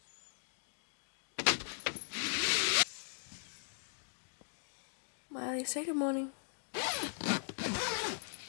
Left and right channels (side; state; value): right; silent; digital silence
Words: Miley, say good morning.